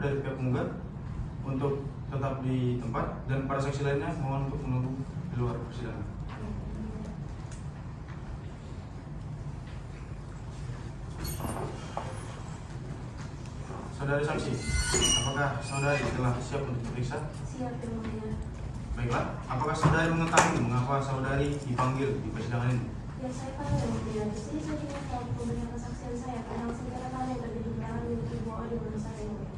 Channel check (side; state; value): both; identical; correlation 1.00